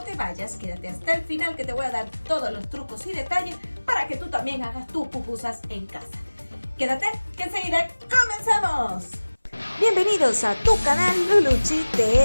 te vayas, quédate hasta el final que te voy a dar todos los trucos y detalles para que tú también hagas tus pupusas en casa. Quédate, que enseguida comenzamos. Bienvenidos a tu canal Luluchi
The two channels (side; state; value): both; inverted; correlation -1.00